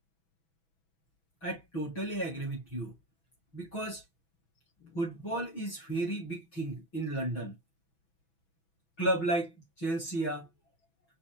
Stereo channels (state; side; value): late; right; 6.1 ms